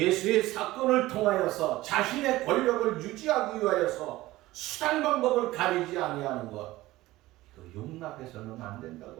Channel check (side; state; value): left; quieter; 17.5 dB